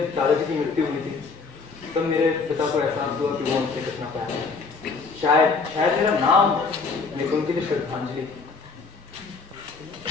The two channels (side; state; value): right; quieter; 4.6 dB